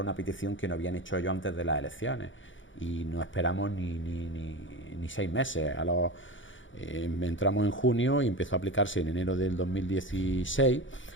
una petición que no habían hecho ellos antes de las elecciones, y no esperamos ni 6 meses. Entramos en junio y empezó a aplicarse en enero del 2016,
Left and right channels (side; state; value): right; late; 0.56 ms